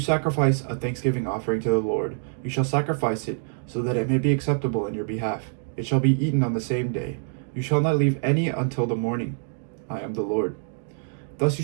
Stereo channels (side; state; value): left; silent; 61 dB below the other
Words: a thanksgiving offering to the Lord, you shall sacrifice it so that it may be acceptable in your behalf. It shall be eaten on the same day. You shall not leave any until the morning. I am the Lord. Thus you